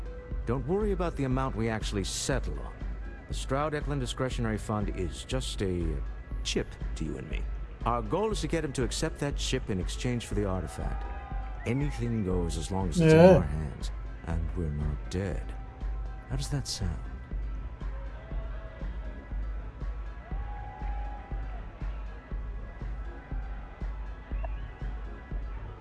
Don't worry about the amount we actually settle on. The Stroud-Eklund Discretionary Fund is just a chip to you and me. Our goal is to get him to accept that chip in exchange for the artifact. Anything goes as long as it's in our hands, and we're not dead. How does that sound?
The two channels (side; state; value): both; identical; correlation 1.00